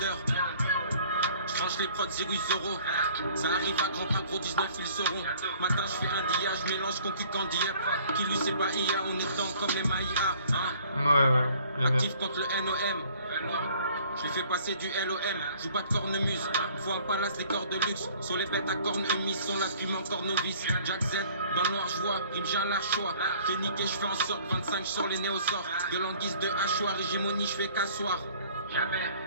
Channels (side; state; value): both; inverted; correlation -0.54